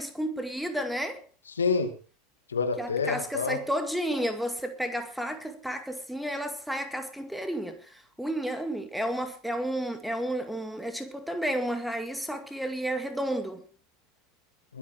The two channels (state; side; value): normal; both; correlation 0.45